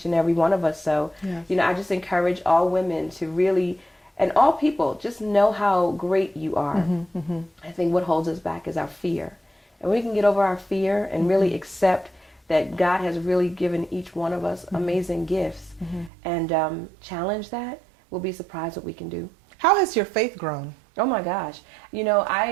and every one of us. So, I just encourage all women to really, and all people, just know how great you are. I think what holds us back is our fear. And we can get over our fear and really accept that God has really given each one of us amazing gifts, and challenge that, we'll be surprised what we can do. How has your faith grown? Oh my gosh.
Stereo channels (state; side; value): drops out; left; at 16.1 s